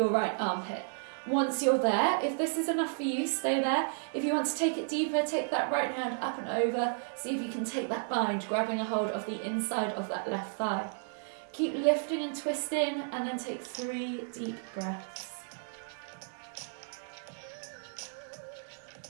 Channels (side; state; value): left; silent; digital silence